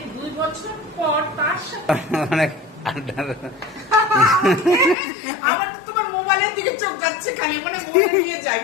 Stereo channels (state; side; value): drops out; right; at 5.0 s